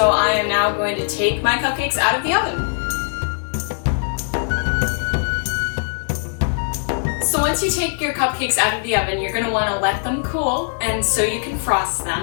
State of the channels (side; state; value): right; silent; 65 dB below the other